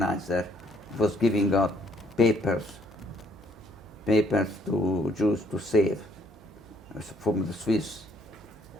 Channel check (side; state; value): right; noise; hum, 23 dB below the sound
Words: was giving out papers to Jews to save from the Swiss.